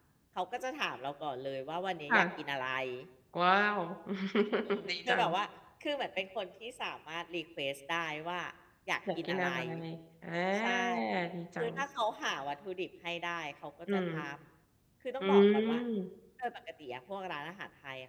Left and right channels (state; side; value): identical; both; correlation 1.00